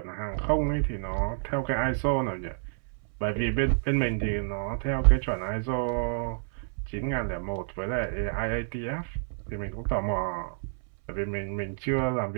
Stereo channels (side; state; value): left; silent; 59 dB below the other